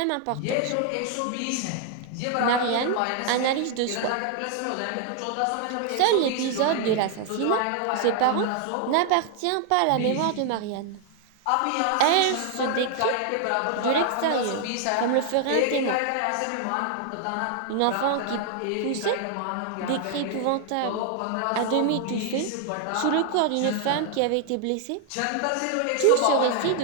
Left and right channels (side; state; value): both; different; correlation 0.00